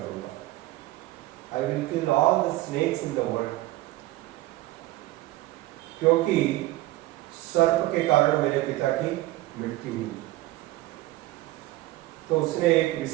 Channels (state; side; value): quieter; left; 17.3 dB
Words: दूंगा। I will kill all the snakes in the world, क्योंकि सर्प के कारण मेरे पिता की मृत्यु हुई। तो उसने एक